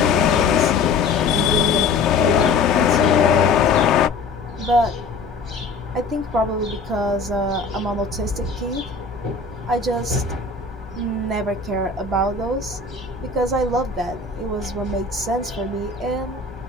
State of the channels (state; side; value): quieter; right; 4.3 dB